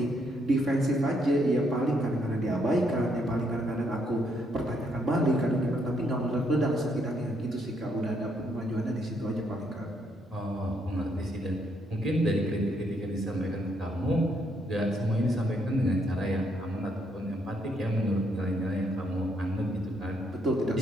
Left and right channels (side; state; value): both; normal; correlation 0.73